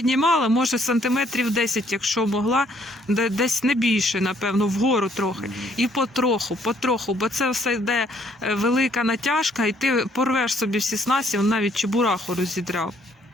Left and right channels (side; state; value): both; normal; correlation 0.65